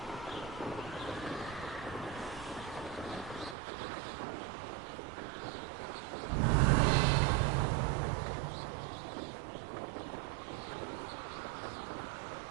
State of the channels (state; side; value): drops out; left; at 3.6 s